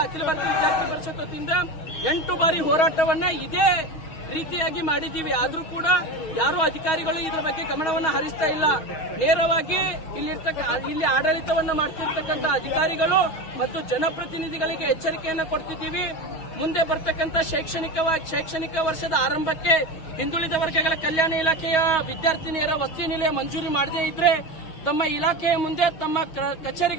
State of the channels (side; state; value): right; late; 6.2 ms